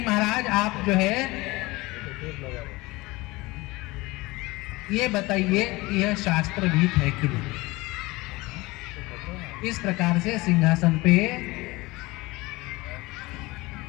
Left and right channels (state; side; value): quieter; right; 21.8 dB